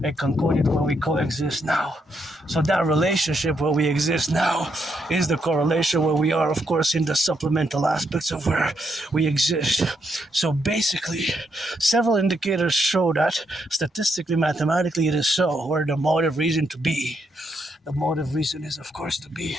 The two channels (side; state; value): both; normal; correlation 0.78